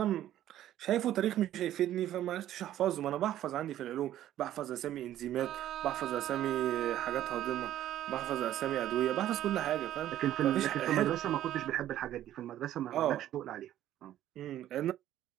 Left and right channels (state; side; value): quieter; left; 12.5 dB